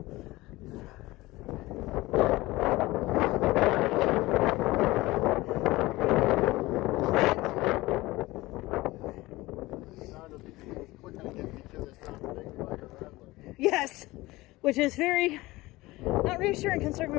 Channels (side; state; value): right; quieter; 19.7 dB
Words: Yes, which is very not reassuring considering